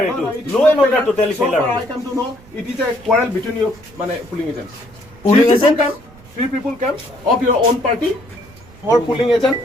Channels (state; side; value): noise; right; rumble, 23 dB below the sound